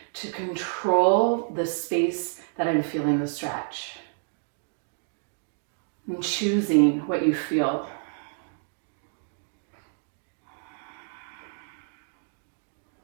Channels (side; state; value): left; silent; digital silence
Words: to control the space that I'm feeling the stretch. And choosing what you feel.